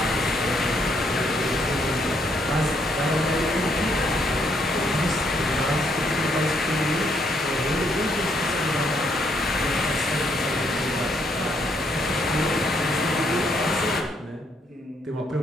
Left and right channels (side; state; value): both; normal; correlation 0.72